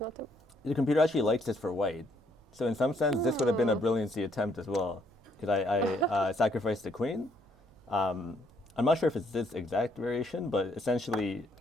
a. the computer actually likes this for white. So in some sense, this would have been a brilliancy attempt as well, because I sacrificed the queen. I'm not sure if it's this exact variation, but essentially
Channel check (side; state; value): both; normal; correlation 0.69